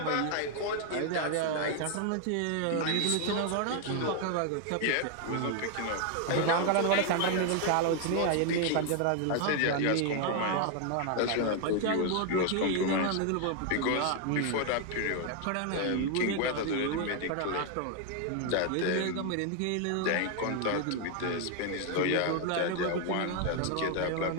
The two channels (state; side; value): different; both; correlation 0.00